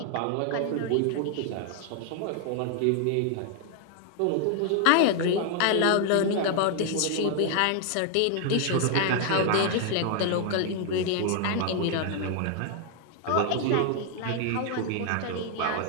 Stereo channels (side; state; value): both; different; correlation 0.00